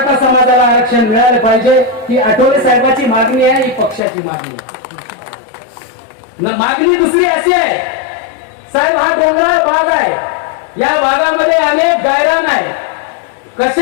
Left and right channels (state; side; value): drops out; right; at 4.0 s